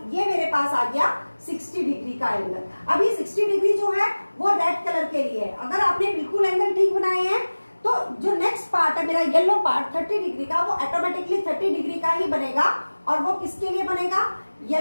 ये मेरे पास आ गया 60 डिग्री का एंगल। अब ये 60 डिग्री जो है वो रेड कलर के लिए है। अगर आपने बिल्कुल एंगल ठीक बनाए हैं तो जो नेक्स्ट पार्ट है मेरा येलो पार्ट 30 डिग्री का, वो ऑटोमेटिकली 30 डिग्री का ही बनेगा। और वो किसके लिए बनेगा,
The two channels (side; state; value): both; inverted; correlation -1.00